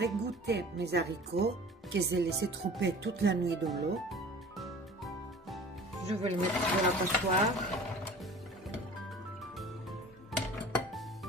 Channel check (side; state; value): both; normal; correlation 0.44